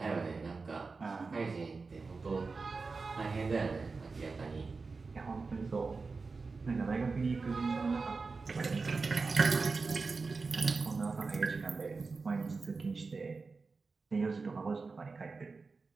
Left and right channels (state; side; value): quieter; left; 4.3 dB